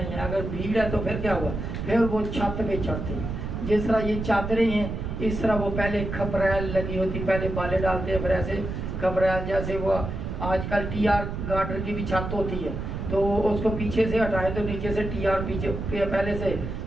है, अगर भीड़ है तो फिर क्या हुआ? फिर वो छत पे चढ़ते, जिस तरह ये चादरें हैं इस तरह वो पहले खपरैल लगी होती, पहले बाले डालते हैं, फिर ऐसे खपरैल, जैसे वो आजकल टीआर गार्डर की भी छत होती है तो उसको पीछे से हटाएं तो नीचे से टीआर पीछे पहले से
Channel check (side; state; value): right; noise; rumble, 5 dB below the sound